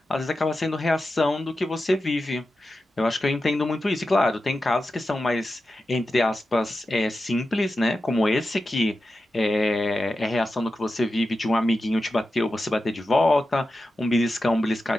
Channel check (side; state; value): both; normal; correlation 0.92